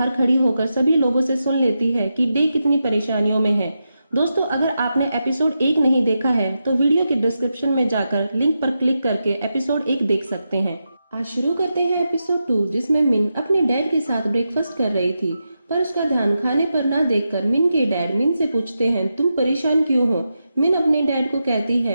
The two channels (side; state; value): both; inverted; correlation -0.88